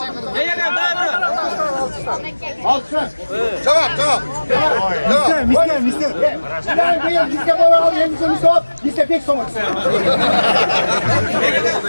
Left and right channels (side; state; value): both; inverted; correlation -1.00